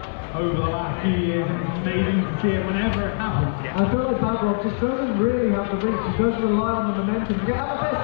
over the last few years, and it's amazing to see it whenever it happens. I feel like Backrock just doesn't really have the reach. He does rely on the momentum to get out of this.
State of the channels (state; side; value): silent; right; digital silence